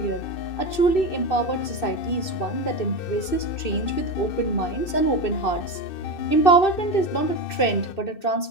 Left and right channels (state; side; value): late; right; 2.6 ms